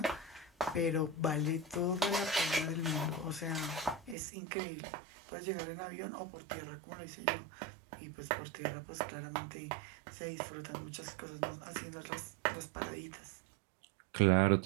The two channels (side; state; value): left; drops out; at 4.2 s